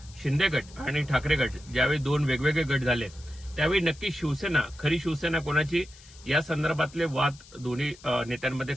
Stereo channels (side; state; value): left; noise; hiss, 22 dB below the sound